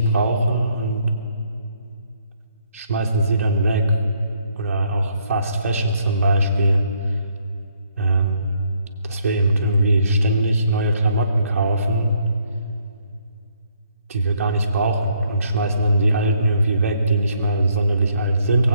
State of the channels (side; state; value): both; inverted; correlation -0.69